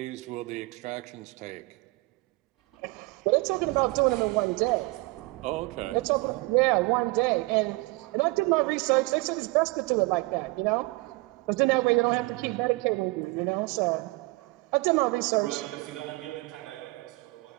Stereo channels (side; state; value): left; quieter; 23.9 dB